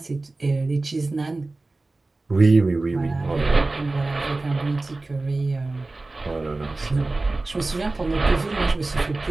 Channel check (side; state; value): left; quieter; 3.2 dB